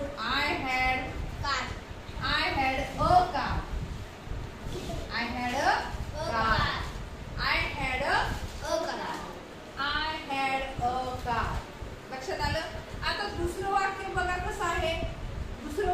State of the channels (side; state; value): both; identical; correlation 1.00